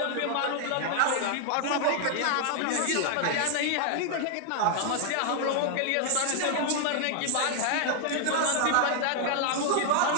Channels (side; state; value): both; different; correlation 0.00